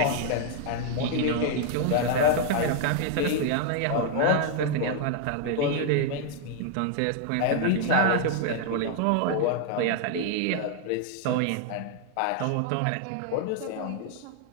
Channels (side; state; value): both; different; correlation 0.00